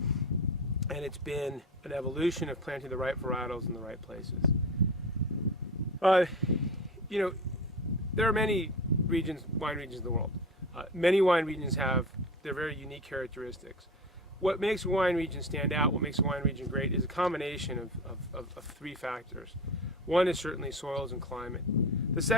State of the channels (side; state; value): both; normal; correlation 0.30